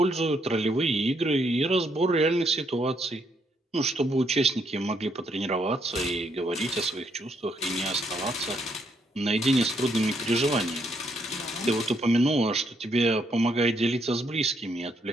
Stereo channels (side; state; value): both; normal; correlation 0.74